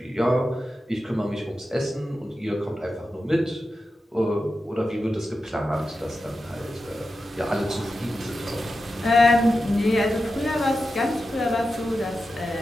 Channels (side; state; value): both; normal; correlation 0.91